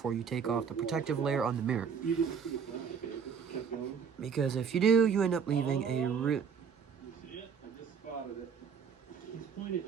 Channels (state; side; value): quieter; left; 6.7 dB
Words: you take off the protective layer on the mirror. You didn't see it last day, kept going. Because if you do, you end up leaving a You see it? I just spotted it. He's